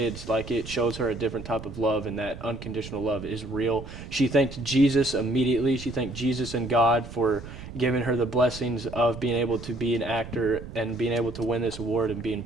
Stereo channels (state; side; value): noise; right; rumble, 12 dB below the sound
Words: like, it shows her a different type of love, and that unconditional love is real. She thanked Jesus immediately. She thanked Jesus and God for giving her the blessings of being able to be an actor and being able to win this award and being